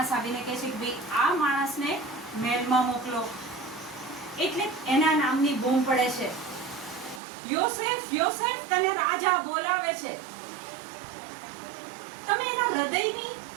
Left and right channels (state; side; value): drops out; left; at 7.2 s